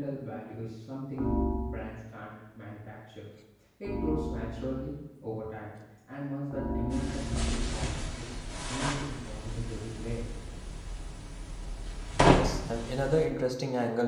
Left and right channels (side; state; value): both; identical; correlation 1.00